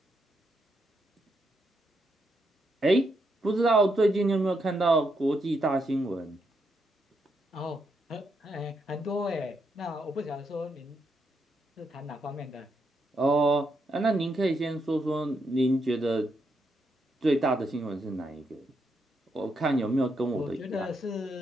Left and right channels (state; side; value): normal; both; correlation 0.79